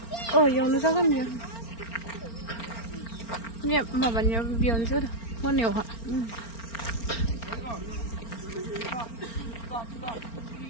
Oh, yang nu sakan ya. Ni mabannya bion sudah. Mau neu ha.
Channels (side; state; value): right; late; 4.4 ms